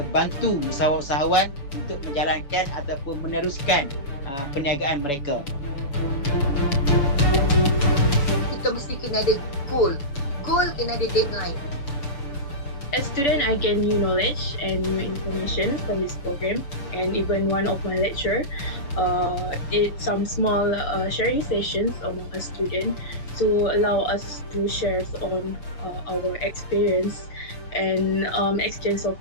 bantu usahawan-usahawan untuk menjalankan ataupun meneruskan perniagaan mereka. Kita mesti kena ada goal. Goal kena ada deadline. As a student, I gain new knowledge and new information from this program, and even one of my lecturer did some small sharing sessions among a student to allow us to share on our experience and exchange of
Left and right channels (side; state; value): right; late; 7.0 ms